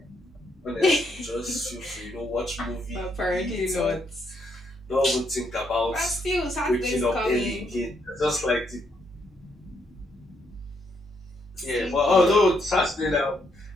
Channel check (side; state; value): both; normal; correlation 0.75